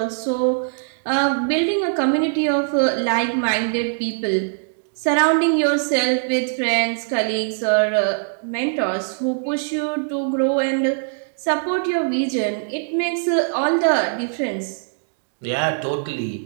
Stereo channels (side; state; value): left; silent; digital silence